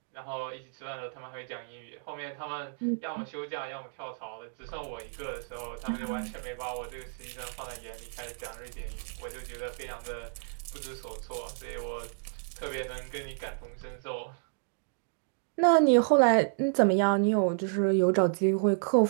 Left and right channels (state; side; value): silent; left; digital silence